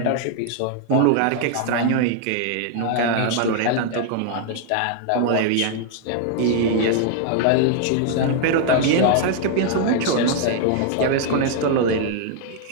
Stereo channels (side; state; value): both; different; correlation 0.00